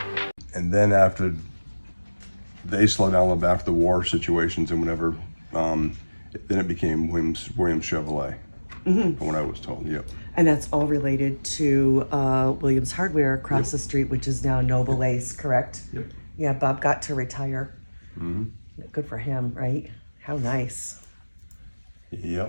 And then after they slowed down after the war situations and whatever, then it became Williams Chevrolet, from what I was told. Yep. And that's all related to Williams Hardware across the street, which is now Noble Ace, correct? Yep. Yeah, Bob got to retire. Mm-hmm. Good for him, right? How nice.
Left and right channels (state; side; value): inverted; both; correlation -1.00